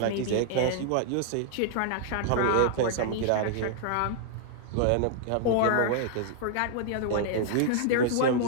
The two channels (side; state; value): both; different; correlation -0.01